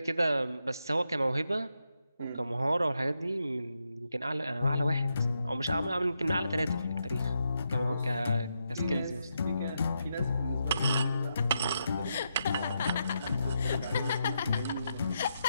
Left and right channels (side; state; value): both; inverted; correlation -0.83